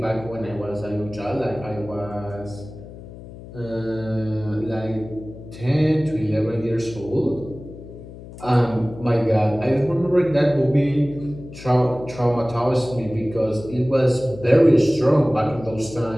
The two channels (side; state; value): left; noise; hum, 15 dB below the sound